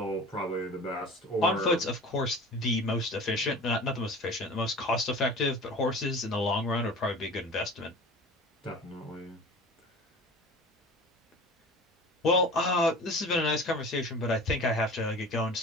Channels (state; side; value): normal; both; correlation 0.39